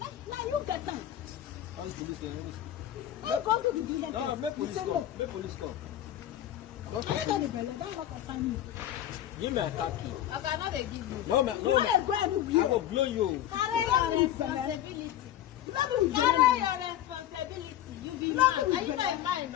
Now you get time. How is police there? You go to the head test. No, make police come. Make police come. I got the belly. Don't want to find me. Give me a taxi. I cannot give you. No, no. I will blow you. Carry your responsibility. Carry your responsibility. You be mad. Are you not mine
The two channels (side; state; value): right; quieter; 12.0 dB